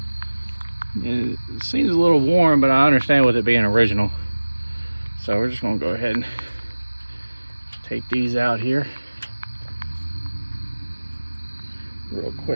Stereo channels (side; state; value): both; inverted; correlation -1.00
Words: It seems a little warm, but I understand with it being original. So we're just gonna go ahead and take these out here real